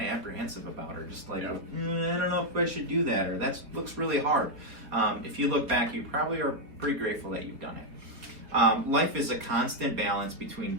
apprehensive about, or just like, I don't know if I should do that, or that looks really hard. If you look back, you probably are pretty grateful that you've done it. Life is a constant balance between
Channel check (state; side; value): late; left; 4.0 ms